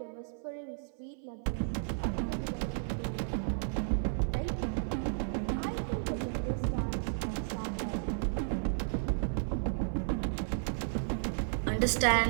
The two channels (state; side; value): silent; left; 56 dB below the other